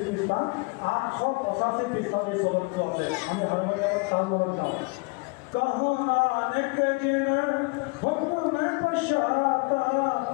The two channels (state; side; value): quieter; right; 30.4 dB